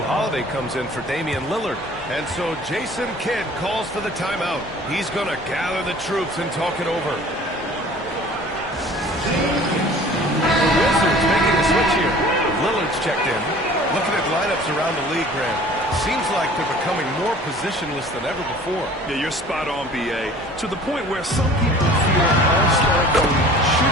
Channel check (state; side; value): normal; both; correlation 0.47